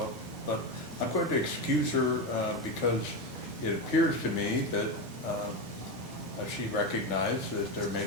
But I'm going to excuse her because it appears to me that she recognized that there may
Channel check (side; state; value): both; normal; correlation 0.15